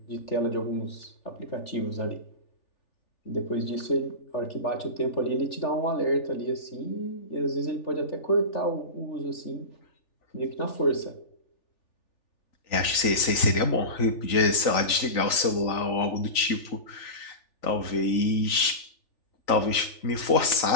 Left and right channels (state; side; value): late; right; 3.4 ms